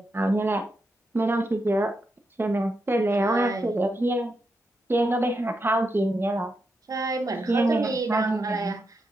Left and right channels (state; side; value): normal; both; correlation 0.84